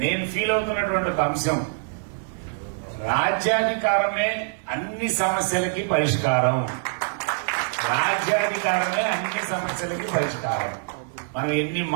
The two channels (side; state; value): left; silent; digital silence